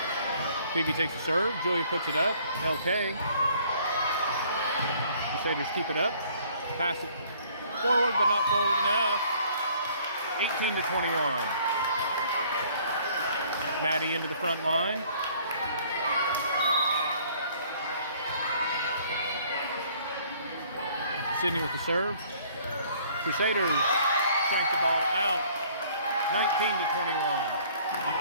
Phoebe takes the serve. Julia puts it up. LK. Crusaders keep it up. Pass it forward, but not forward enough. 18-21. Maddie into the front line. Sydney with the serve. Crusaders crank the ball out. 19-21.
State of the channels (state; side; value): inverted; both; correlation -0.58